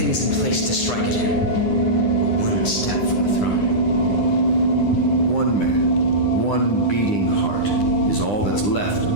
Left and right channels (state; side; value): late; right; 9.9 ms